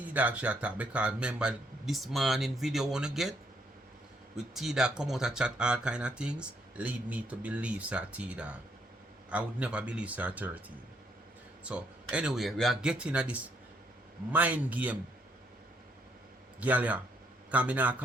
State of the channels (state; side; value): normal; both; correlation 0.71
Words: she attack because remember this morning video wanna get with T-Dog come out and chat all kind of things lead me to believe sir T-Dog. I would never believe sir 13. So anyway, we are getting at this mind game. Girl, yeah. Because I not